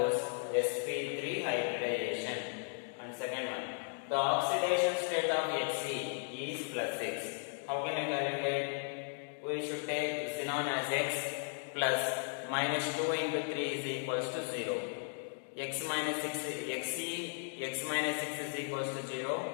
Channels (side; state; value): right; silent; 54 dB below the other